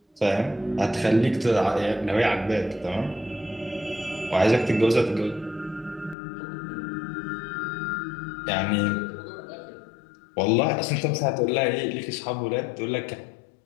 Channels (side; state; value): right; drops out; at 6.2 s